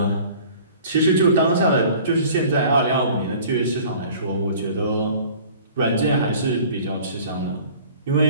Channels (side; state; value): both; inverted; correlation -0.48